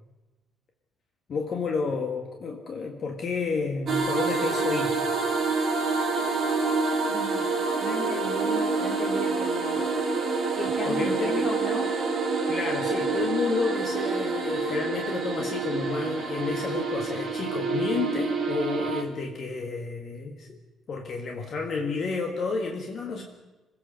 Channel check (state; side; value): normal; both; correlation 0.62